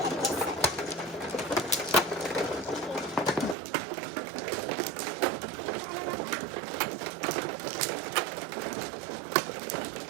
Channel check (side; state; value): left; drops out; at 3.6 s